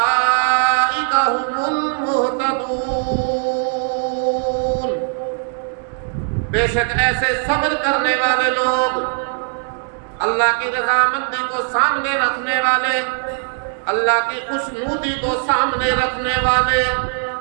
هم المہتدون، بے شک ایسے صبر کرنے والے لوگ، اللہ کی رضامندی کو سامنے رکھنے والے، اللہ کی خوشنودی کو سامنے رکھنے والے،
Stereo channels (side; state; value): left; silent; 56 dB below the other